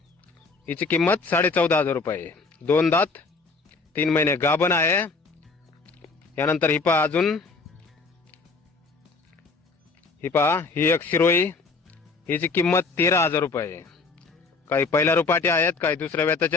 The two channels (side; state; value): right; quieter; 4.2 dB